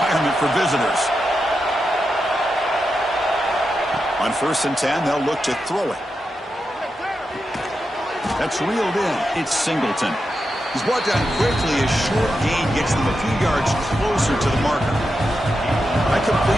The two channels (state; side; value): normal; both; correlation 0.88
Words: for visitors. On 1st and 10, they'll look to throw it. That's reeled in. It's Singleton. He's brought down quickly. A short gain gets them a few yards closer to the marker. That